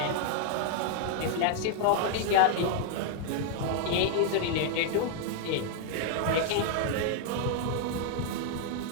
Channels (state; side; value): different; both; correlation 0.00